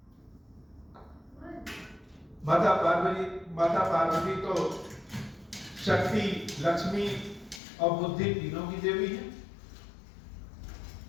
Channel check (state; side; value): drops out; right; at 7.6 s